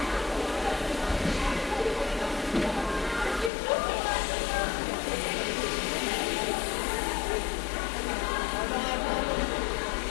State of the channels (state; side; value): drops out; right; at 3.5 s